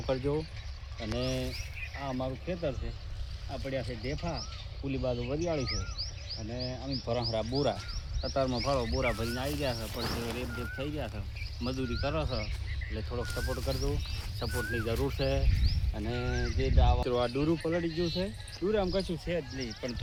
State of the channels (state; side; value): identical; both; correlation 1.00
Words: કરજો। અને આ અમારું ખેતર છે। આ પડ્યા છે ઢેફા, પુલી બાજુ વરિયાળી છે અને અમે ભરહરા બોરા કતારમાં ફાળો બોરા ભરીને આવી ગયા છે, પણ રેપ થઈ ગયા છે। મજૂરી કરો છો એટલે થોડોક સપોર્ટ કરજો, સપોર્ટની જરૂર છે। અને જે આ ડૂરું પલળી ગયું છે, ડૂર આમ કશું છે જ નહીં, પણ